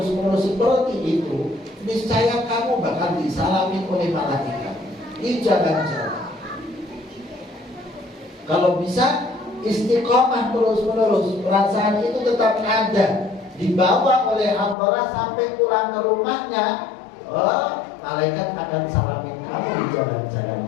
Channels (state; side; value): drops out; right; at 14.8 s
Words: seperti itu, niscaya kamu bakal disalami oleh malaikat di jalan-jalan. Kalau bisa istiqomah terus-menerus, perasaan itu tetap ada, dibawa oleh hamba sampai pulang ke rumahnya, malaikat akan salamin kamu di jalan-jalan,